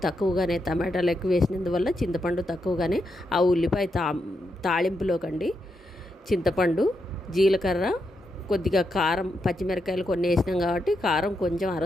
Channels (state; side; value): normal; both; correlation 0.83